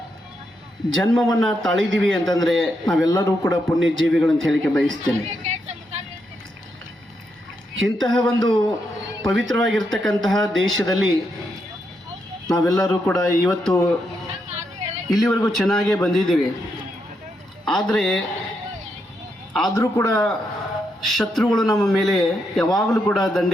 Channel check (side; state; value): both; normal; correlation 0.81